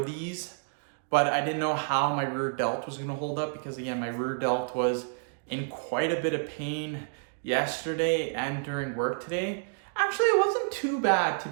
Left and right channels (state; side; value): silent; left; digital silence